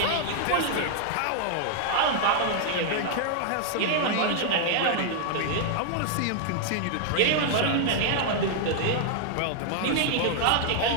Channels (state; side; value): different; both; correlation 0.00